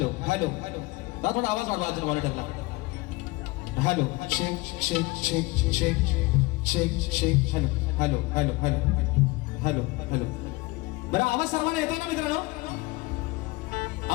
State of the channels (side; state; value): right; quieter; 23.1 dB